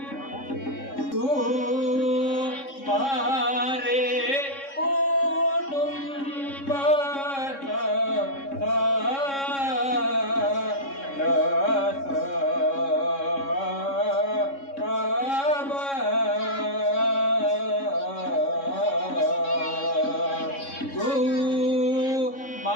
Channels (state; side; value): late; right; 3.6 ms